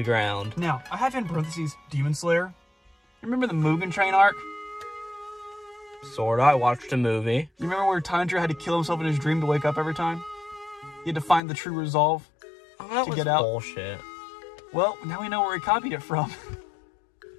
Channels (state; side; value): drops out; right; at 11.4 s